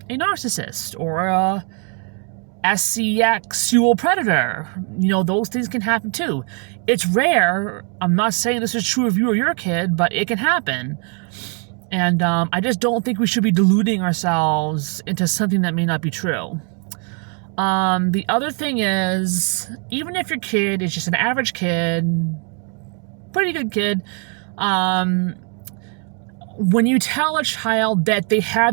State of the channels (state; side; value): quieter; left; 39.2 dB